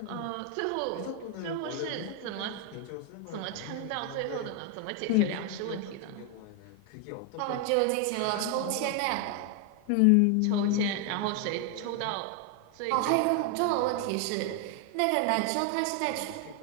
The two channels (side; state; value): both; different; correlation 0.01